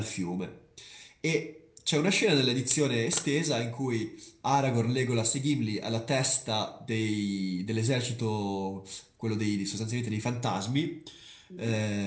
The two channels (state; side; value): identical; both; correlation 1.00